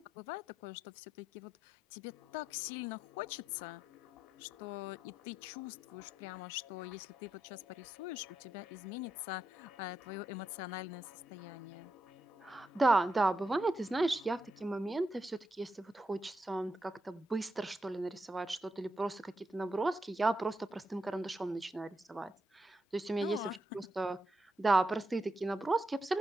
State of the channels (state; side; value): normal; both; correlation 0.84